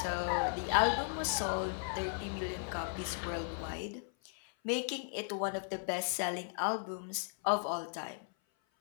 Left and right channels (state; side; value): silent; right; 54 dB below the other